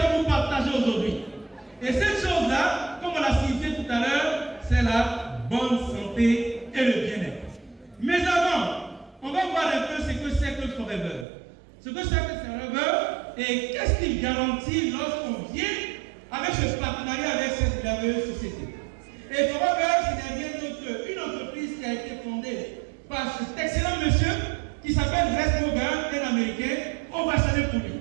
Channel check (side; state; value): left; drops out; at 11.2 s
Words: vous partager aujourd'hui. Et cette chose-là, comme on l'a signifié tout à l'heure, c'est la bonne santé et le bien-être. Mais avant, on va voir un peu ce que c'est que Forever. Ce que c'est que Forever et qu'est-ce qu'il garantit lorsqu'on vient avec ce partenariat avec cette merveilleuse société. Et Forever, ce n'est rien d'autre qu'une entreprise qui a été fondée par cet excellent monsieur qui s'appelle Rex Morgan, un Américain. On va saluer pour lui.